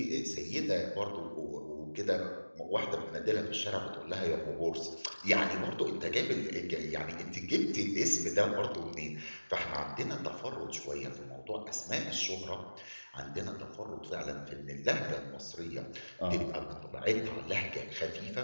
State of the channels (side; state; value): both; inverted; correlation -1.00